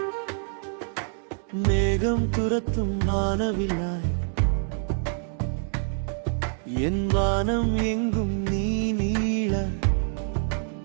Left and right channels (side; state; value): left; silent; 61 dB below the other